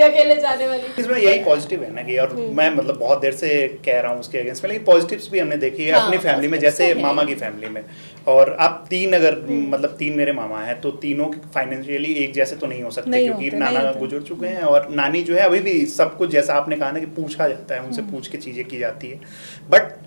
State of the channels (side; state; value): both; inverted; correlation -1.00